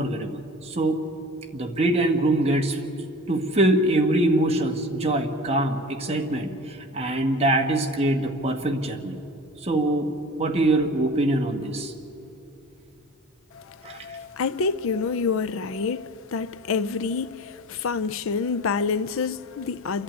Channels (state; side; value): normal; both; correlation 0.37